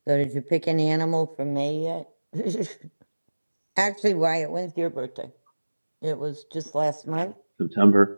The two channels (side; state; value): both; inverted; correlation -1.00